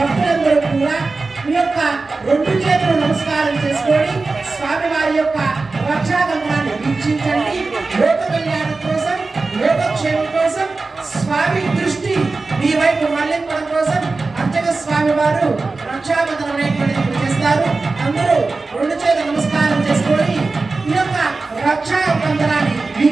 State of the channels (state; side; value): quieter; left; 3.7 dB